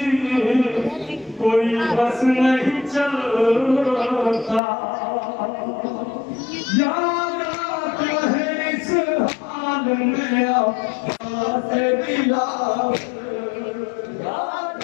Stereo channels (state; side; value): drops out; right; at 4.6 s